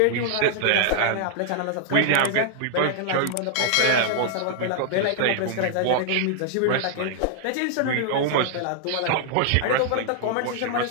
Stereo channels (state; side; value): different; both; correlation -0.01